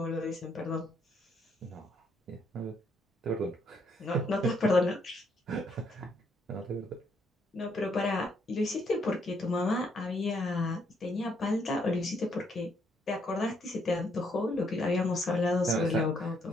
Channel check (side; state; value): both; normal; correlation 0.72